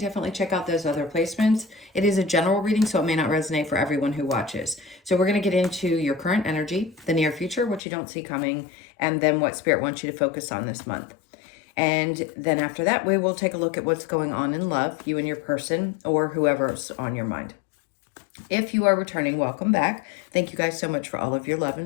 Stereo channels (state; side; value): drops out; right; at 7.8 s